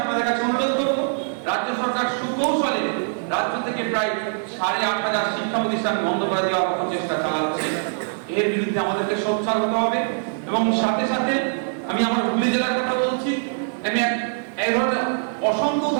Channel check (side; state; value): left; silent; digital silence